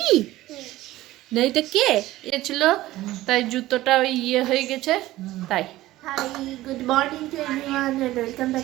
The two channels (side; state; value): left; quieter; 16.3 dB